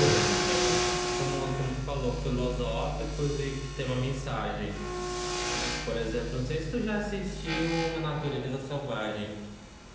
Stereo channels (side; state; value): both; identical; correlation 1.00